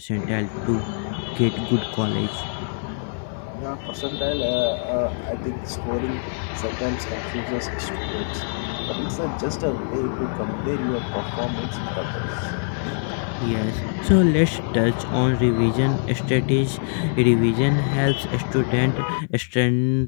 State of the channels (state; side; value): silent; right; digital silence